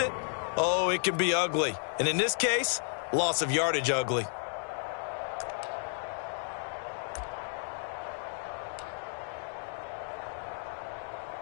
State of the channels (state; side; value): silent; right; digital silence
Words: oh, it can be ugly. And in this case, loss of yardage ugly.